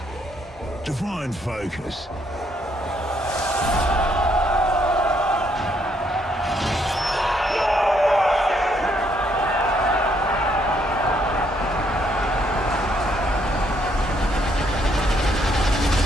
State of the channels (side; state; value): both; normal; correlation 0.71